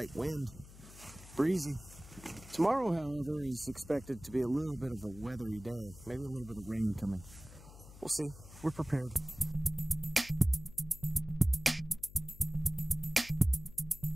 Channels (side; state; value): left; noise; hum, 18 dB below the sound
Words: wind, breezy. Tomorrow, however, is expected to be a little bit of a weathery day. Maybe a little bit of rain coming. We'll see. We're prepared.